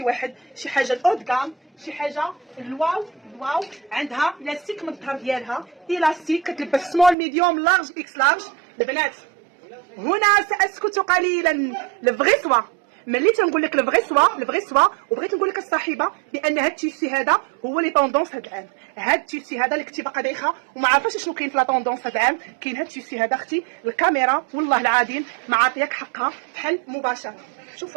واحد، شي حاجه الاود كام، شي حاجه الواو الواو. عندها لاستيك من الظهر ديالها، الاستيك كتلبس سمول ميديوم لارج اكس لارج. البنات هنا ساسكت قليلا. الفغي سوا ملي تنقول لك الفغي سوا وبغيت نقول لك الصاحبه بان هاد التيسي هذا هو لي طوندونس هاد العام. هاد التيسي هذا اللي كنتي باقا دايخه وما عارفاش شنو كاين في لا طوندونس هاد العام، كاين هاد التيسي هذا اختي. الكاميرا والله العظيم ما عاطياك حقها بحال مباشره.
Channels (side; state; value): left; drops out; at 7.2 s